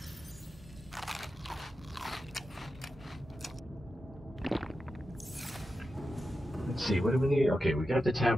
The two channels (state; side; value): normal; both; correlation 0.90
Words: Let's see, what do we need? Okay, we got the